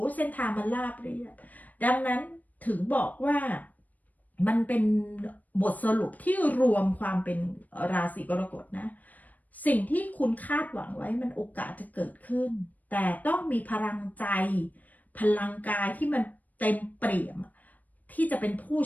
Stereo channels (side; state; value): right; late; 0.079 ms